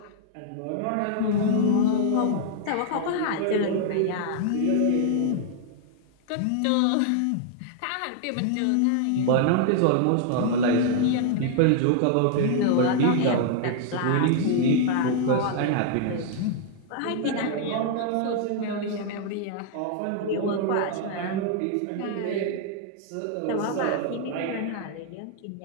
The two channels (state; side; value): different; both; correlation 0.00